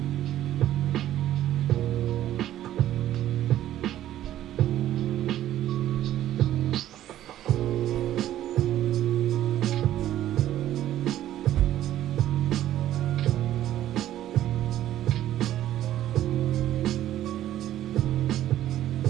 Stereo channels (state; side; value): quieter; left; 12.7 dB